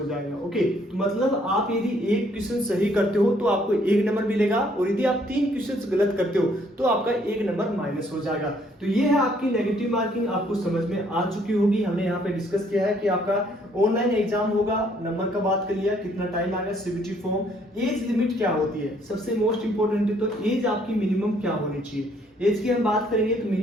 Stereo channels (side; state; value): both; normal; correlation 0.65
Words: जाएगा। ओके, तो मतलब आप यदि एक क्वेश्चन सही करते हो तो आपको 1 नंबर मिलेगा और यदि आप 3 क्वेश्चन गलत करते हो तो आपका 1 नंबर माइनस हो जाएगा। तो ये है आपकी नेगेटिव मार्किंग, आपको समझ में आ चुकी होगी। हमने यहाँ पे डिस्कस किया है कि आपका ऑनलाइन एग्जाम होगा, नंबर का बात कर लिया, कितना टाइम आएगा, सीबीटी फॉर्म, एज लिमिट क्या होती है, सबसे मोस्ट इंपोर्टेंट है तो एज आपकी मिनिमम क्या होनी चाहिए। एज की हम बात करेंगे तो